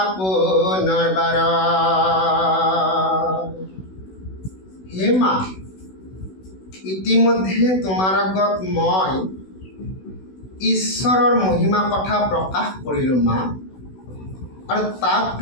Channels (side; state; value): right; late; 16 ms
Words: পুনৰবাৰ। হে মা, ইতিমধ্যে তোমাৰ আগত মই ঈশ্বৰৰ মহিমা কথা প্ৰকাশ কৰিলোঁ মা, আৰু তাক